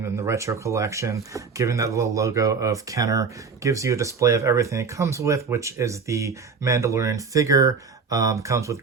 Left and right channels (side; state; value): left; quieter; 5.2 dB